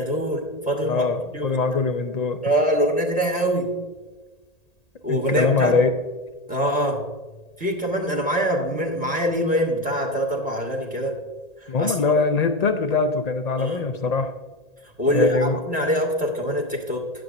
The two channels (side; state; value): right; late; 1.8 ms